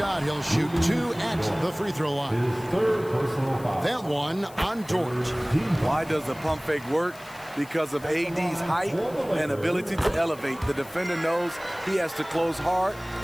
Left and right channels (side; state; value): left; noise; hiss, 22 dB below the sound